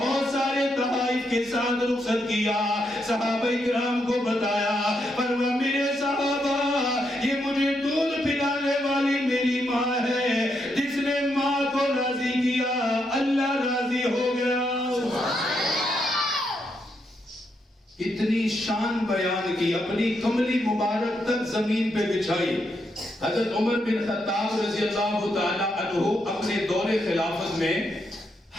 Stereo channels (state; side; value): normal; both; correlation 0.80